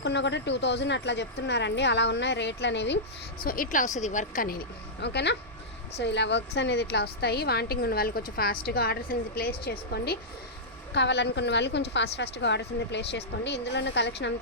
కూడా 2000 అట్లా చెప్తున్నారండి. అలా ఉన్నాయి రేట్లు అనేవి. సో ఇట్లా వస్తుంది వర్క్ అనేది. ఓకేనా? సో ఇలా వర్క్స్ అనేది ఇట్లా వస్తాయి. వాంటింగ్ ఉన్న వాళ్ళు కొంచెం ఫాస్ట్గా ఆర్డర్స్ అనేది ప్లేస్ చేసుకోండి. కావాలనుకున్న వాళ్ళు కొంచెం ఫాస్ట్గా ఆర్డర్స్ అనేది ప్లేస్ చేసుకోండి. ఇందులో ఉన్న కలెక్షన్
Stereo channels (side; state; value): both; normal; correlation -0.12